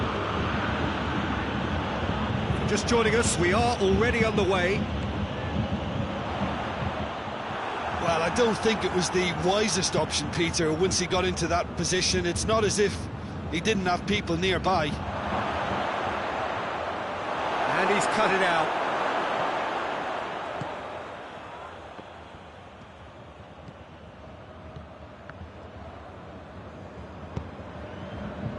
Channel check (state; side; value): identical; both; correlation 1.00